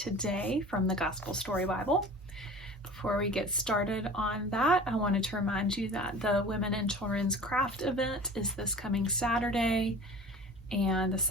from the Gospel Story Bible. Before we get started on that, I wanted to remind you that the Women and Children's Craft event is this coming Saturday, and the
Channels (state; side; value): normal; both; correlation 0.40